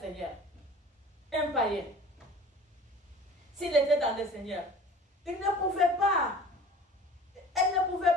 Un païen. S'il était dans le Seigneur, il ne pouvait pas. Elle ne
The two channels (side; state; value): both; normal; correlation 0.44